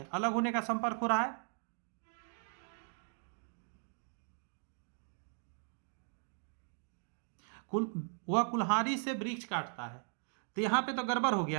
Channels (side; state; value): left; silent; 52 dB below the other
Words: अलग होने का संपर्क हो रहा है। वह कुल्हाड़ी से वृक्ष काटता है, तो यहां पे तो गड़बड़ हो